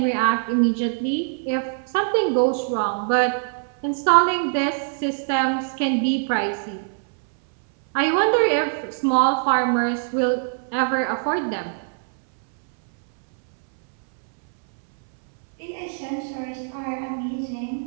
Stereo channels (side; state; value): left; silent; 64 dB below the other